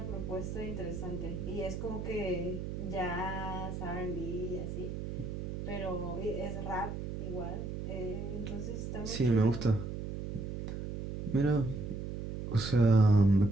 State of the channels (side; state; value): right; noise; hum, 6 dB below the sound